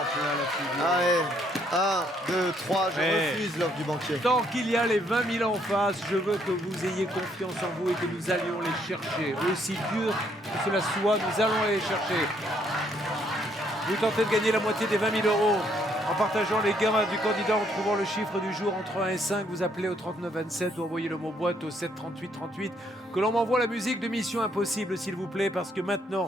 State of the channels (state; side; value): normal; both; correlation 0.70